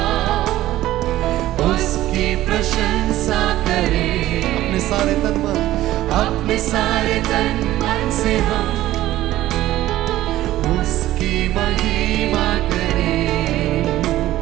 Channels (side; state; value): left; quieter; 14.9 dB